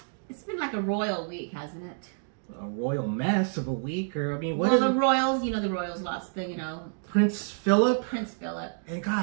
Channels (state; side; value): silent; left; 59 dB below the other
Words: it's been like a royal week, hasn't it? A royal mess of a week, or I mean, what Well, is the it? royals, you know, the royals lost the, you know, Prince Philip? Prince Philip. And